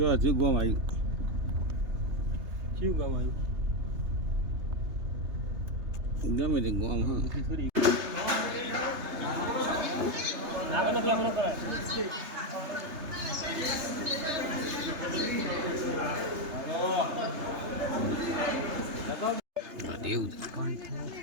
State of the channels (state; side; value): late; left; 3.3 ms